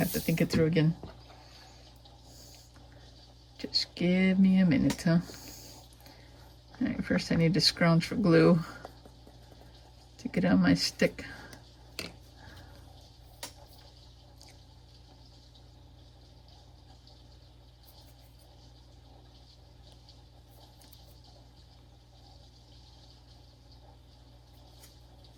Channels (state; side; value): identical; both; correlation 1.00